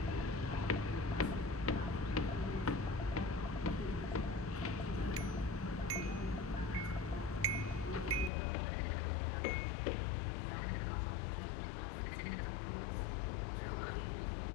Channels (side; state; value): right; drops out; at 8.3 s